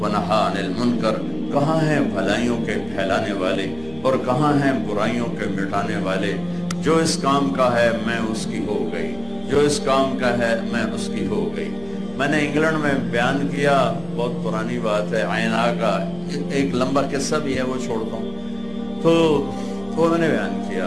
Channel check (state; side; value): noise; left; hum, 22 dB below the sound